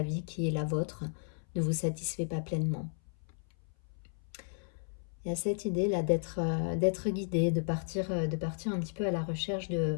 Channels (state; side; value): silent; right; 55 dB below the other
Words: vie qui est la vôtre ne vous satisfait pas pleinement. Il y a cette idée là d'être guidé, de partir un petit peu à la recherche